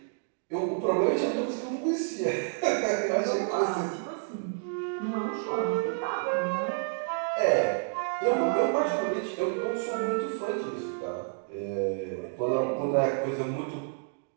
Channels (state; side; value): silent; left; digital silence